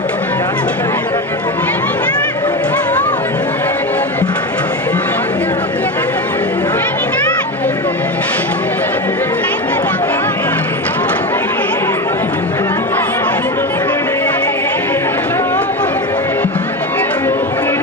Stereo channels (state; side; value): normal; both; correlation 0.20